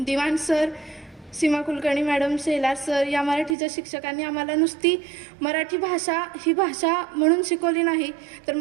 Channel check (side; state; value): left; drops out; at 3.6 s